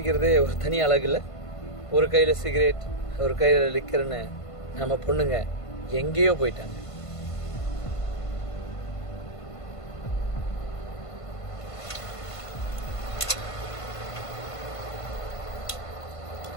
ஒரு தனி அழகு இல்லை? ஒரு கையில் சிகரெட், ஒரு கையில் லிக்கர்னு நம்ம பொண்ணுங்க எங்கேயோ போயிட்டாங்க.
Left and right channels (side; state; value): right; late; 1.5 ms